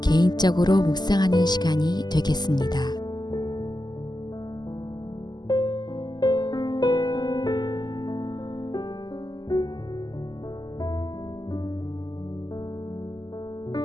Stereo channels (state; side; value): late; right; 0.21 ms